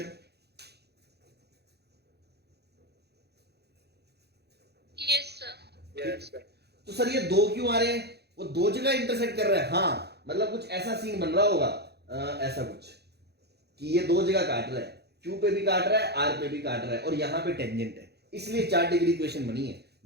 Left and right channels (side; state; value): left; late; 0.48 ms